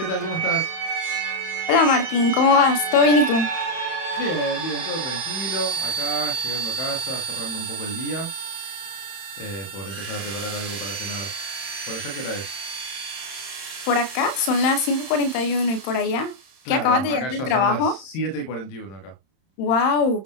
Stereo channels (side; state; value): right; late; 31 ms